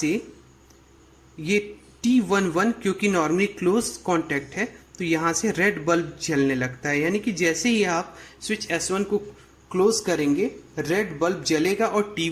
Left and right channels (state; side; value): identical; both; correlation 1.00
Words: ये T11 क्योंकि नॉर्मली क्लोज कॉन्टैक्ट है तो यहाँ से रेड बल्ब जलने लगता है। यानी कि जैसे ही आप स्विच S1 को क्लोज करेंगे रेड बल्ब जलेगा और